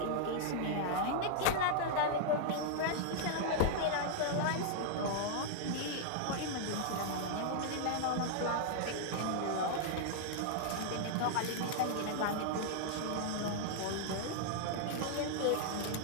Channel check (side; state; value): both; different; correlation -0.01